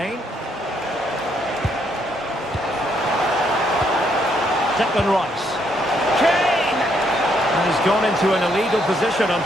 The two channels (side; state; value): both; normal; correlation 0.73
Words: Declan Rice. Kane! And he's gone into an illegal position,